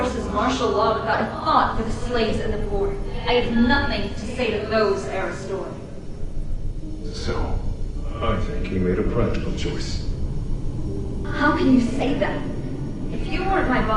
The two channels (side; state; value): both; identical; correlation 1.00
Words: martial law without a thought for the slaves and the poor. I have nothing to say to those, Aristor. So, I think he made a practical choice. How can you say that? If you weren't my